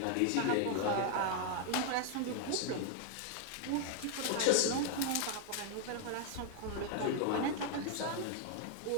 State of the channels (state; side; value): different; both; correlation 0.00